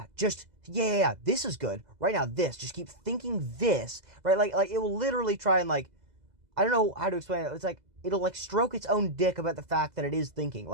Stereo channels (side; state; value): left; late; 2.0 ms